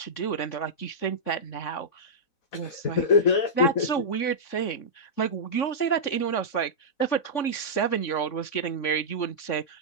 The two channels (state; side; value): late; right; 3.5 ms